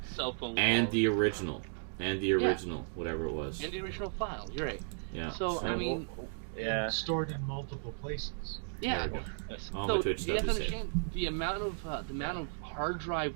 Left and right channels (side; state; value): left; silent; digital silence